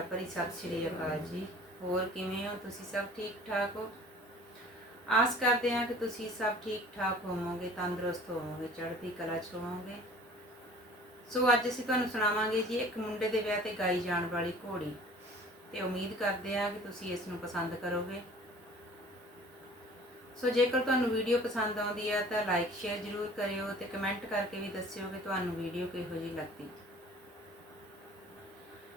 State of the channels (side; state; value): both; normal; correlation 0.48